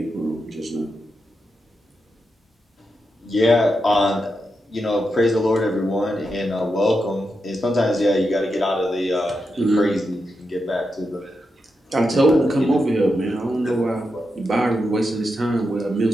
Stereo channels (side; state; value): both; normal; correlation 0.86